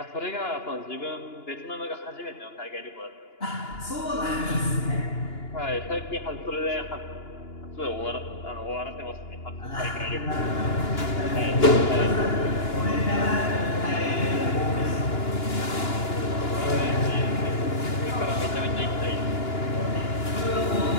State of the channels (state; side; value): late; right; 2.9 ms